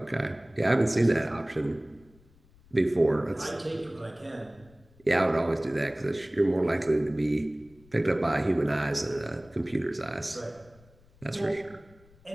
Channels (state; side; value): noise; left; rumble, 27 dB below the sound